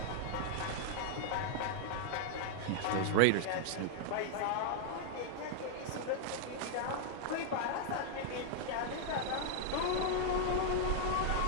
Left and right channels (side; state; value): both; different; correlation -0.01